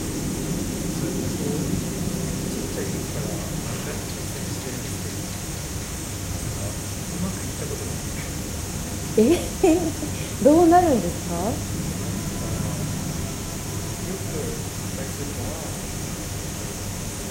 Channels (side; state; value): both; identical; correlation 1.00